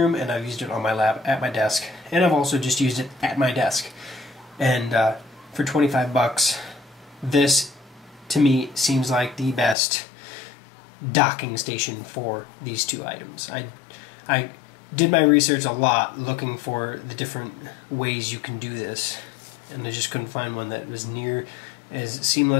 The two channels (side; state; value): right; drops out; at 9.8 s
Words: and I've used it on my lap at my desk, and I've also just used it at my desk. And for 25 bucks, this to me seems like the best docking station for these two items. I did my research a lot looking for the different ways you can do this, and I just couldn't find one that was near as